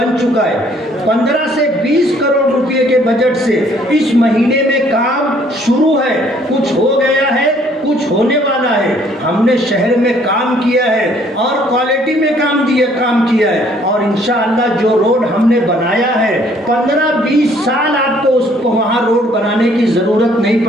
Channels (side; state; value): both; normal; correlation 0.61